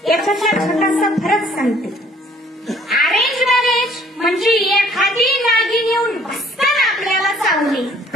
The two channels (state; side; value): normal; both; correlation 0.59